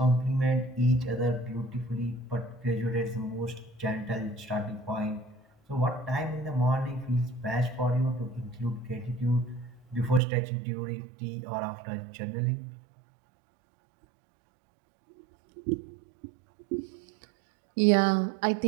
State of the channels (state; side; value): drops out; left; at 10.2 s